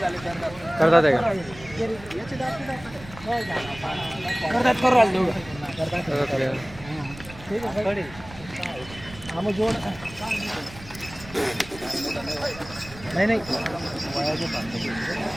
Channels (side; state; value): right; noise; rumble, 17 dB below the sound